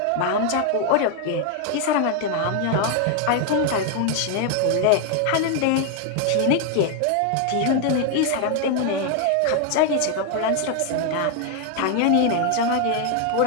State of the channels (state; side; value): different; both; correlation 0.00